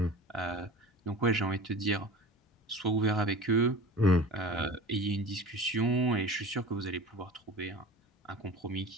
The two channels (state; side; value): normal; both; correlation 0.37